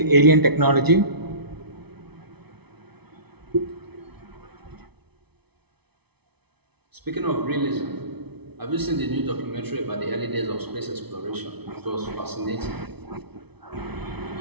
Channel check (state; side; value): late; left; 0.99 ms